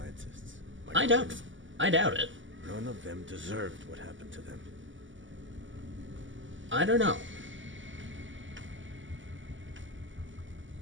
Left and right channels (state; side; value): late; left; 0.55 ms